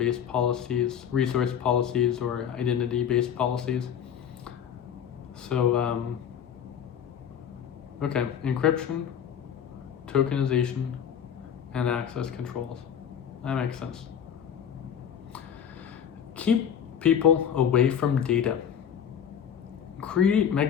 policies, resource policies, or identity-based policies. So, okay, encryption, tokenization, and access controls. That makes sense. Keep people away from data. Create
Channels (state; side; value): quieter; right; 8.6 dB